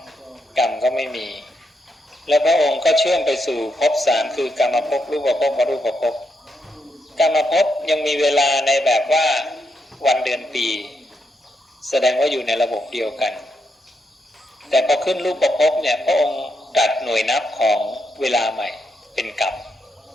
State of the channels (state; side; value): normal; both; correlation 0.81